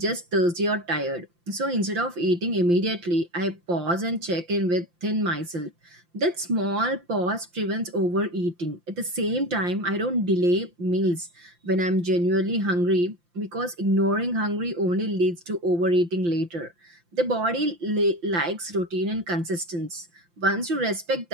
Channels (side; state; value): left; late; 5.8 ms